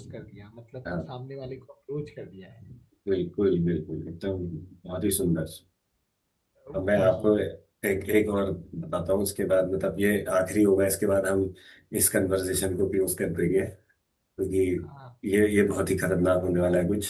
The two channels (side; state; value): both; identical; correlation 1.00